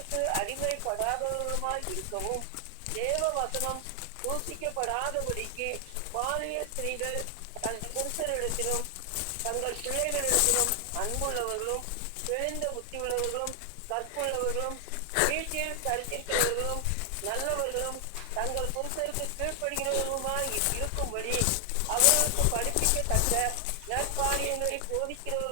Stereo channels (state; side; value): different; both; correlation 0.00